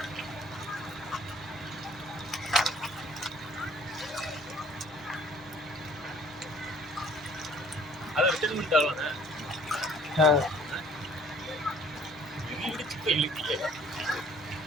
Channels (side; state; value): both; normal; correlation 0.56